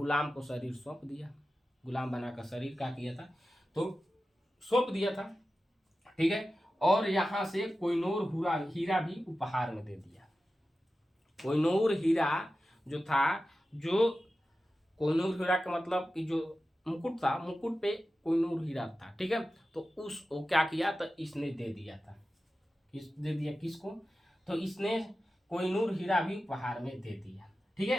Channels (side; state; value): both; normal; correlation 0.94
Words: को शरीर सौंप दिया। गुलाम बनाकर शरीर का किया था, तो सौंप दिया था, ठीक है। और यहाँ से कोहिनूर हीरा भी उपहार में दे दिया। कोहिनूर हीरा जो था, जो कोहिनूर हीरा का मतलब कि जो मुकुट था, मुकुट पे कोहिनूर हीरा था, ठीक है। तो उस वो क्या किया, तो इसने दे दिया था, दे दिया किसको, तो इसने कोहिनूर हीरा भी उपहार में दे दिया, ठीक